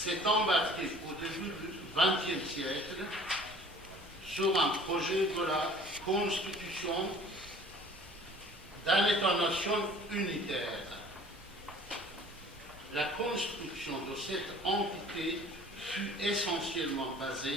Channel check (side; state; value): both; normal; correlation 0.49